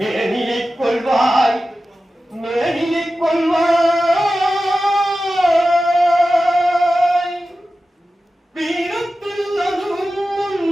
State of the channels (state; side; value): normal; both; correlation 0.94